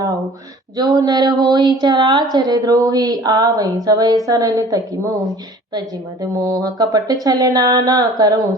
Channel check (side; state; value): both; normal; correlation 0.48